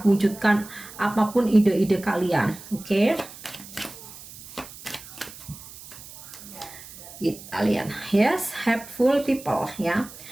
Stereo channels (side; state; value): right; noise; hiss, 16 dB below the sound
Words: wujudkan apapun ide-ide kalian. Oke. Kita lihat, yes, helpful people ya.